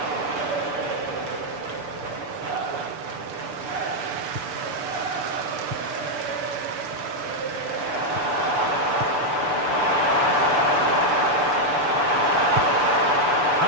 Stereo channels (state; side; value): late; left; 6.9 ms